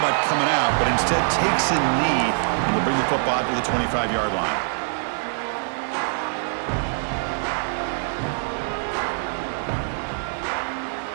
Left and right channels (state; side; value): silent; left; 63 dB below the other